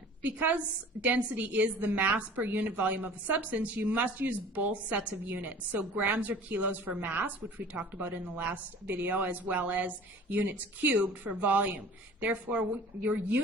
Because density is the mass per unit volume of a substance, you must use both sets of units. So grams or kilos for mass, which we talked about in the last video, as well as units cubed for volume. Therefore, your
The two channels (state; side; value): normal; both; correlation 0.45